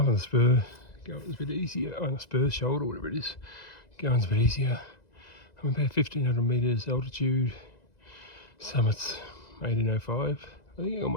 on the spur, going's a bit easier. On the spur shoulder, whatever it is, going's a bit easier. I'm about 1500 metres altitude. Summit's 1805. I think I can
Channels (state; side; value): late; right; 2.0 ms